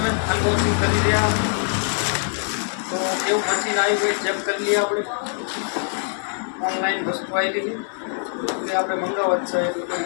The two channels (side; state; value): right; silent; 63 dB below the other